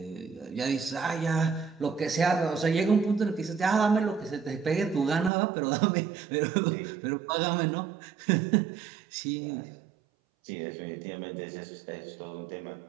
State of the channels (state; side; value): drops out; left; at 5.3 s